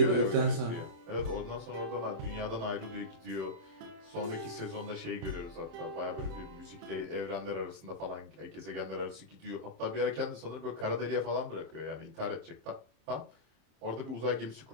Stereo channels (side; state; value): left; late; 27 ms